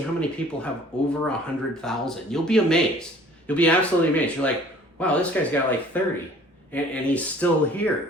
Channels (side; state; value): both; normal; correlation 0.52